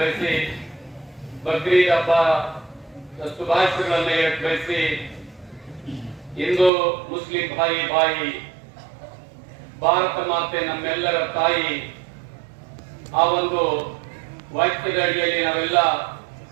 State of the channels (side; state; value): left; drops out; at 6.7 s